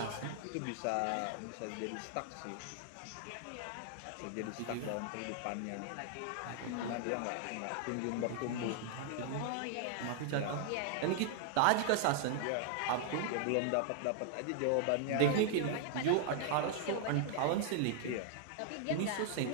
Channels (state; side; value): different; both; correlation 0.00